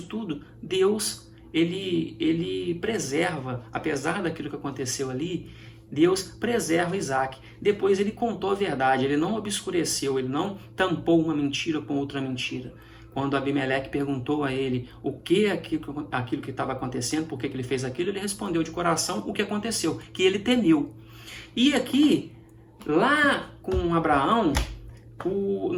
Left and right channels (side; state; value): both; identical; correlation 1.00